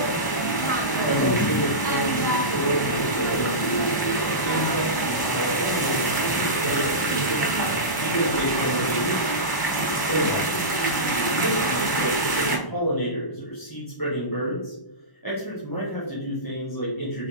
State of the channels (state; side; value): late; right; 1.0 ms